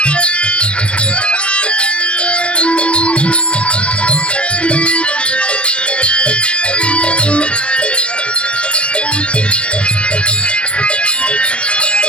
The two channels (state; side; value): late; right; 0.059 ms